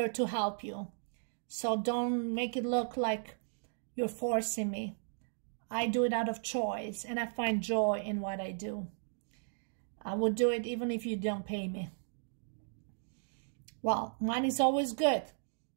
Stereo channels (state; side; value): silent; left; digital silence